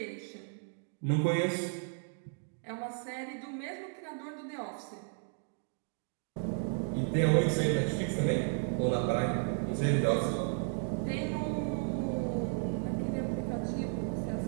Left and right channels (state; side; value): silent; left; 55 dB below the other